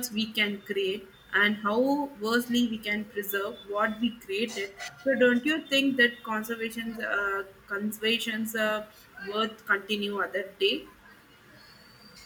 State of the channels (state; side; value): identical; both; correlation 1.00